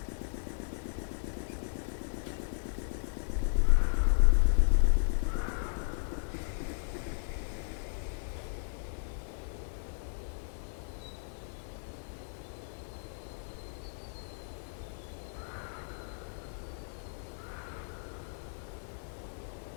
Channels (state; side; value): silent; right; digital silence